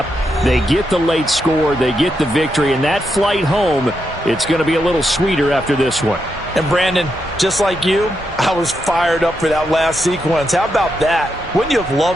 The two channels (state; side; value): normal; both; correlation 0.83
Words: They get the late score, they get the victory, and that flight home, it's going to be a little sweeter after this one. And Brandon, just like you, I was fired up for that last sequence. How about that? Wouldn't you have